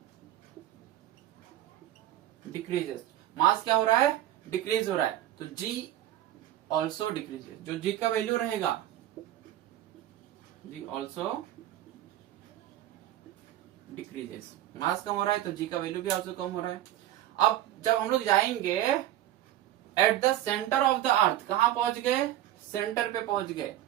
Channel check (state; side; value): quieter; left; 13.1 dB